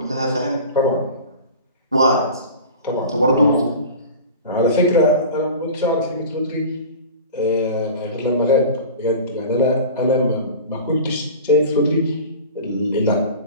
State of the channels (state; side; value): inverted; both; correlation -0.37